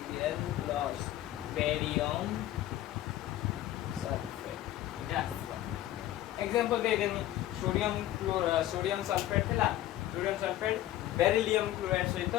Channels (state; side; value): quieter; right; 14.0 dB